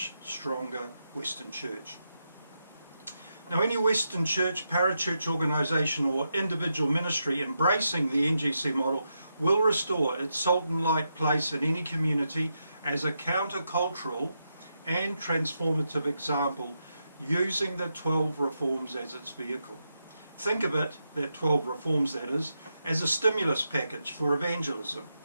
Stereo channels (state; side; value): inverted; both; correlation -0.85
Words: stronger Western church. Now, any Western church, parachurch organisation or individual ministry embracing the NGC model will restore its salt and light place in any community as a countercultural and transformative example, using the 12 reforms as its vehicle. Think of it, that 12 reforms that is, as a stimulus package for evangelism,